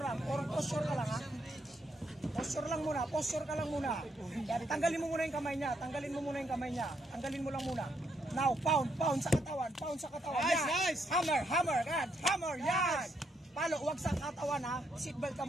lang. Posture ka lang ha. Posture lang muna, posture ka lang muna. Yan, tanggalin mo muna yung kamay niya, tanggalin mo muna yung kamay niya. Tanggalin mo lang muna. Now, pound sa katawan, pound sa katawan. Nice, Yan. nice. Hammer, yan, hammer, yan. Palo, huwag sa katawan ha. Seatbelt ka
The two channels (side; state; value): both; normal; correlation 0.76